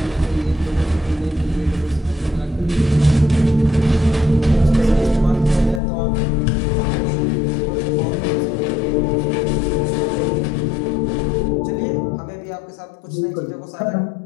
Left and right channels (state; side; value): drops out; right; at 5.8 s